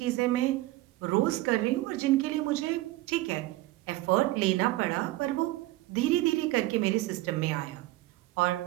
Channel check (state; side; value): quieter; left; 17.8 dB